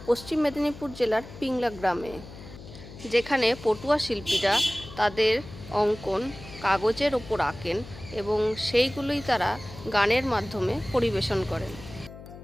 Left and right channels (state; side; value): noise; left; hum, 16 dB below the sound